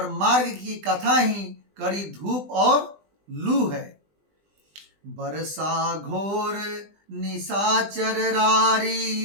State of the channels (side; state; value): left; late; 20 ms